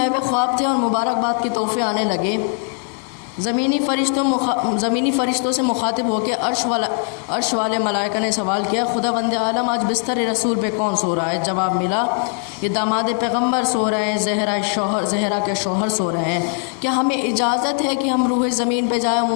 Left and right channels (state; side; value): quieter; right; 39.7 dB